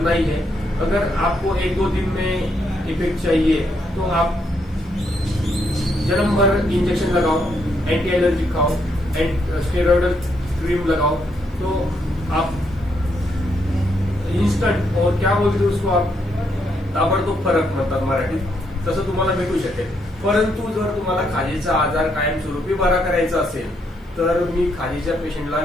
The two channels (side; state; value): both; normal; correlation 0.76